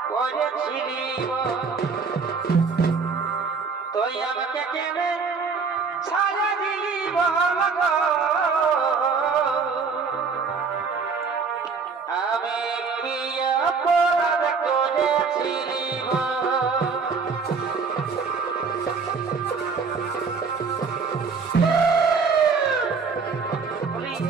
করেছিলি তুই আমাকে কেনে ছাড়া দিলি বল গো আমি প্রিয় পোড়া করেছিলি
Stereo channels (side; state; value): left; quieter; 5.1 dB